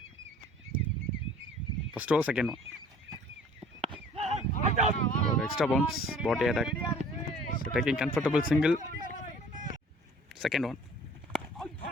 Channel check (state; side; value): normal; both; correlation 0.51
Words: ஃபஸ்ட் ஓவர் செகண்ட் ஒன் ஒரு extra bounce body attack. So taking comfortable single. Second one